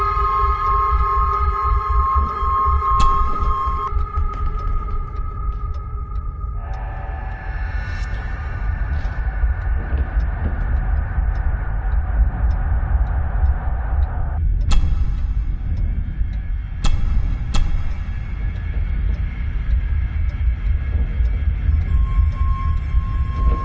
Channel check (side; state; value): both; identical; correlation 1.00